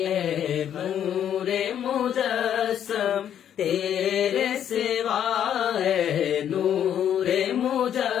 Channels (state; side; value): quieter; right; 9.7 dB